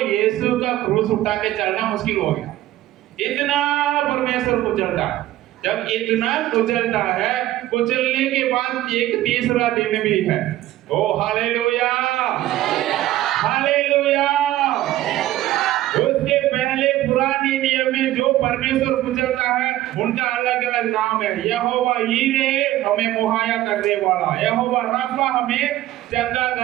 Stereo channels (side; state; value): left; quieter; 14.7 dB